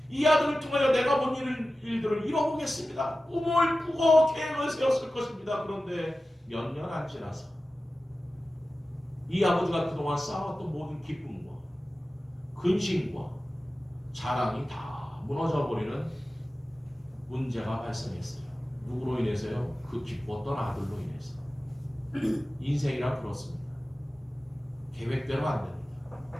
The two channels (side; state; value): both; normal; correlation 0.95